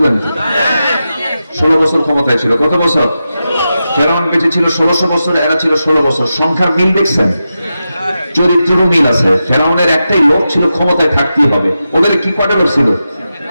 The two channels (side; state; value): both; inverted; correlation -0.90